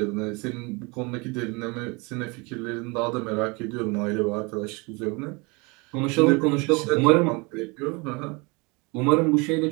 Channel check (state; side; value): quieter; left; 28.2 dB